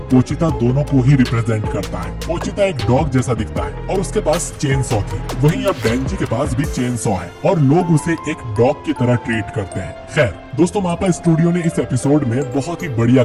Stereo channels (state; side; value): identical; both; correlation 1.00